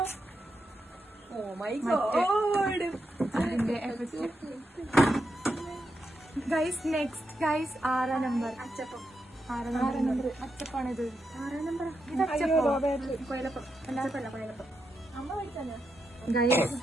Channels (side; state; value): both; normal; correlation 0.85